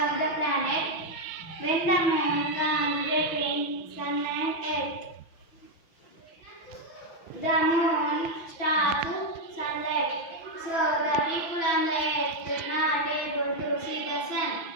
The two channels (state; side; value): late; right; 6.0 ms